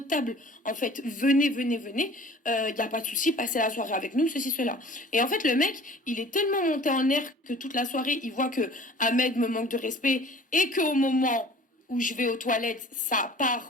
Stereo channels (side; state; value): both; normal; correlation 0.47